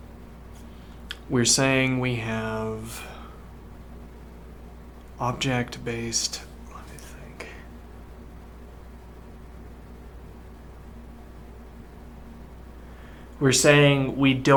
We're saying we have object-based, let me think. We're saying we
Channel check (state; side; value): identical; both; correlation 1.00